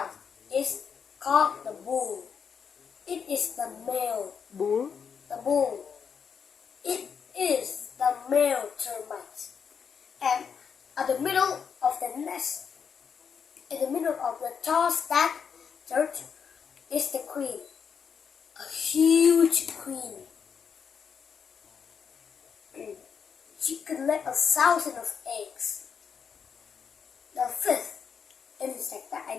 is called the bull. It is the male. Bull? The bull. It is the male termite. And at the middle of the nest, in the middle of the tall stack dirt, is the queen. A huge queen. She could lay 1,000 of eggs. The fifth insect that I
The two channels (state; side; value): quieter; right; 6.7 dB